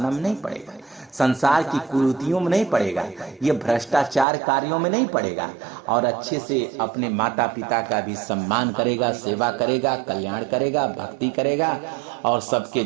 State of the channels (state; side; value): drops out; left; at 4.2 s